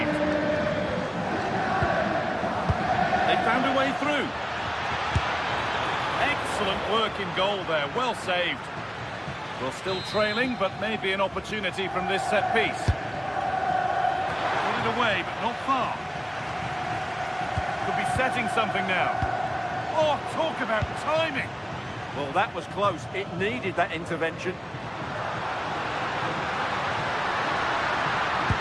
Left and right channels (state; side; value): identical; both; correlation 1.00